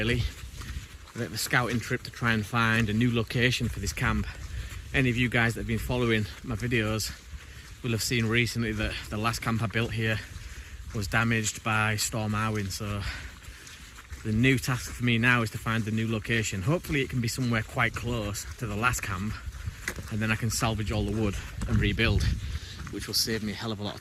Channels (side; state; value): both; identical; correlation 1.00